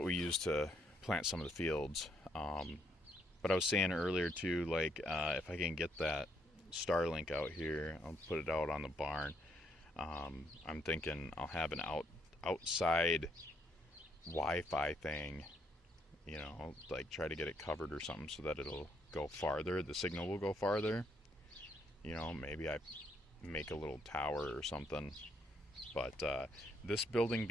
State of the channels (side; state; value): both; normal; correlation 0.72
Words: we use to plant some of the fields. But I was saying earlier too, like if I can get that Starlink out here, I'll put it out on the barn. I'm thinking I'll have an outside Wi-Fi thing, you know, like try to get it covered or something so that it'll go farther. The signal will go farther. You know, maybe I make a little tower or something. But this building